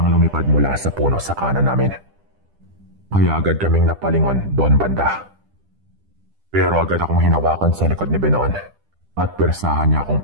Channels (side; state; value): left; late; 10 ms